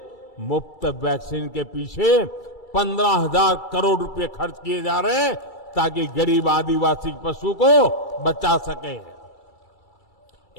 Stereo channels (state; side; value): late; right; 2.3 ms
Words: मुफ्त वैक्सीन के पीछे 15,000 करोड़ रुपए खर्च किए जा रहे हैं, ताकि गरीब आदिवासी पशु को बचा सके।